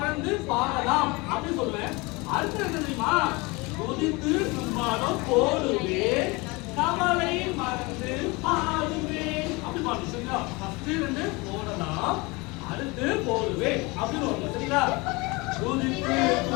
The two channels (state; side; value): quieter; right; 25.4 dB